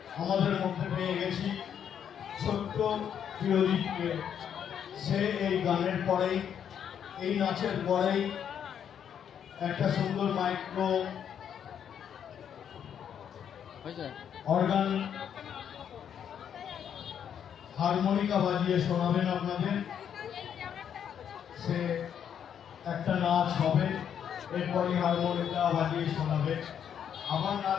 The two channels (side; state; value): right; quieter; 8.6 dB